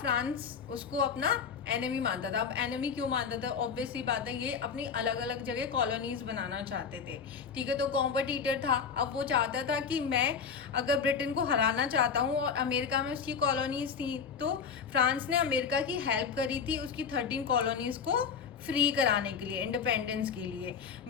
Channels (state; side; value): quieter; right; 6.4 dB